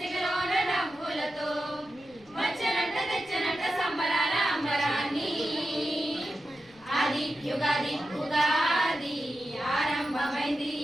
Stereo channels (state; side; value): noise; left; rumble, 28 dB below the sound